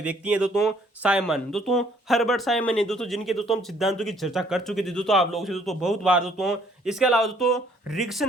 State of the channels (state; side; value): normal; both; correlation 0.63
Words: व्यक्ति हैं दोस्तों साइमन, दोस्तों हर्बर्ट साइमन है दोस्तों, जिनके दोस्तों हम सिद्धांतों की चर्चा कर चुके थे दोस्तों आप लोगों से दोस्तों बहुत बार दोस्तों। इसके अलावा दोस्तों रिग्स